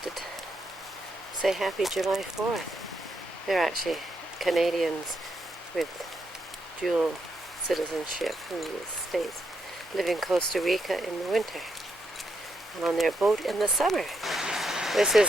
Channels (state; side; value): normal; both; correlation 0.80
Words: to say Happy July 4th. They're actually Canadians with dual citizenship from the States, live in Costa Rica in the winter, and on their boat in the summer. This